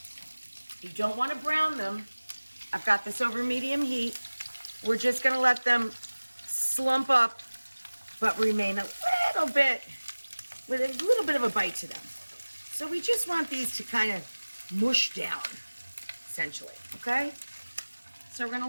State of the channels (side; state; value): both; inverted; correlation -1.00